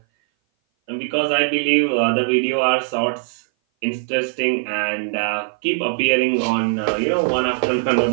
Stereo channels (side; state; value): left; silent; 58 dB below the other